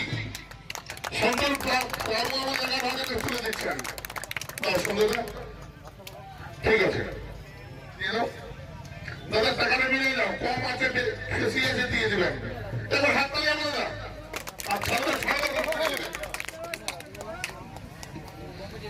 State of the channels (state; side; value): identical; both; correlation 1.00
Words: সন্তোষ বাবু আমাদের হাতে তুলে দিচ্ছেন। সুন্দর ঠিক আছে দাদা, টাকাটা মিলে যাও, কম আছে বেশি আছে দিয়ে দেবেন। এবার হাত তালি আমরা আর ছাড়া